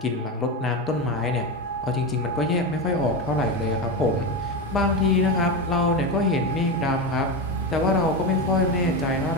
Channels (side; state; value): both; normal; correlation 0.17